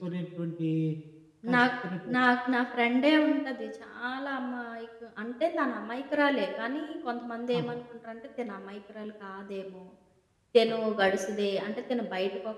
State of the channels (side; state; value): both; identical; correlation 1.00